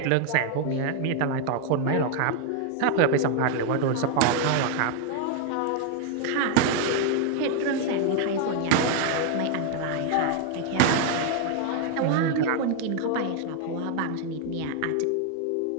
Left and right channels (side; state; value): both; different; correlation 0.00